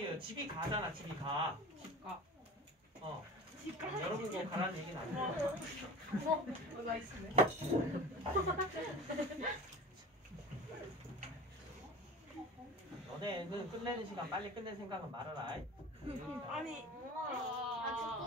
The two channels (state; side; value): normal; both; correlation 0.37